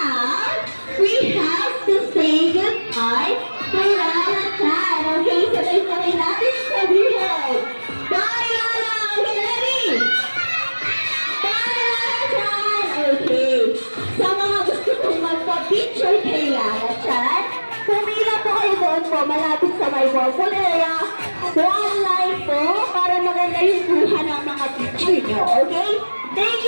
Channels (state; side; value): inverted; both; correlation -1.00